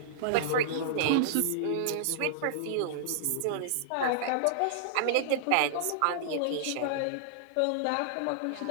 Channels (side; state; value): both; different; correlation -0.01